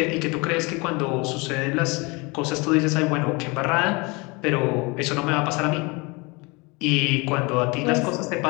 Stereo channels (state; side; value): quieter; right; 27.3 dB